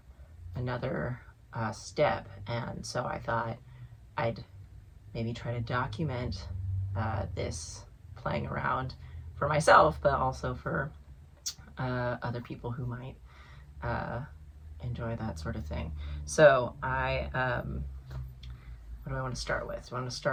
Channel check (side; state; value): both; identical; correlation 1.00